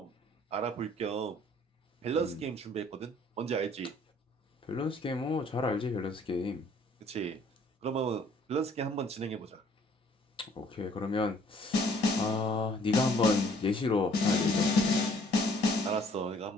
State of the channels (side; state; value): both; normal; correlation 0.59